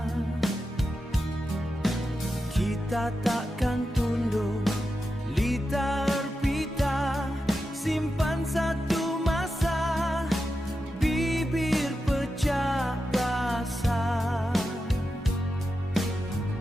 Kita takkan tunduk, litar pita, simpan satu masa, bibir pecah rasa.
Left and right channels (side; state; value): both; normal; correlation 0.90